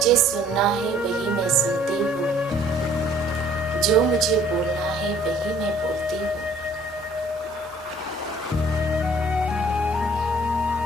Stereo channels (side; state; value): both; normal; correlation 0.57